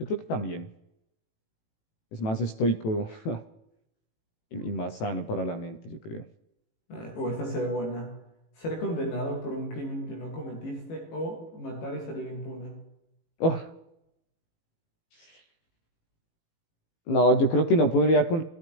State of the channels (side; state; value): right; late; 18 ms